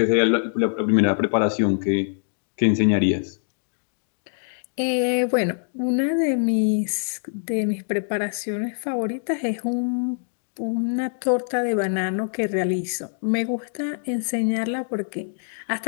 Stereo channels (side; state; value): right; silent; digital silence